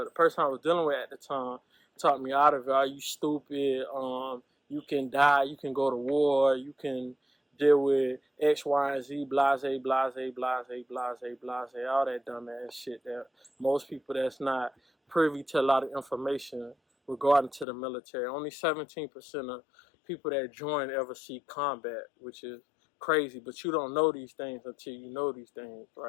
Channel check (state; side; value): drops out; right; at 17.7 s